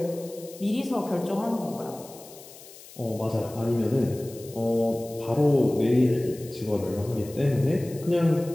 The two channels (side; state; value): left; noise; hiss, 19 dB below the sound